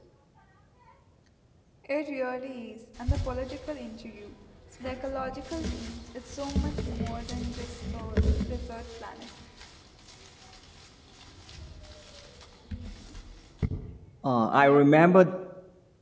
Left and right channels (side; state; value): both; identical; correlation 1.00